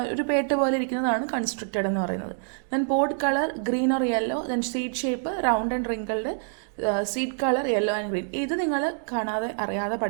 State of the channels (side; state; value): left; silent; digital silence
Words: ഒരു പേട്ട് പോലെ ഇരിക്കുന്നതാണ് കൺസ്ട്രക്റ്റഡ് എന്ന് പറയുന്നത്. Then pod colour green or yellow. Then seed shape round and wrinkled. Seed colour yellow and green. ഇത് നിങ്ങൾ കാണാതെ അറിയാതെ